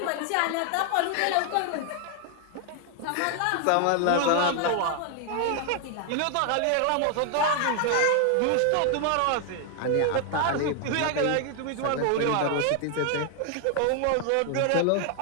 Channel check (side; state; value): both; different; correlation 0.00